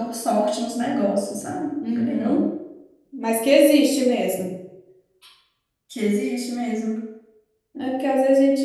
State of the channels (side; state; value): both; identical; correlation 1.00